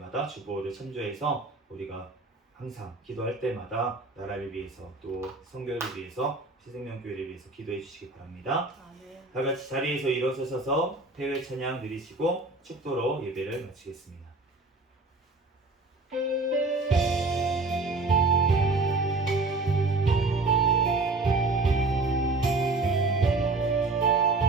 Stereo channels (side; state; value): left; quieter; 3.4 dB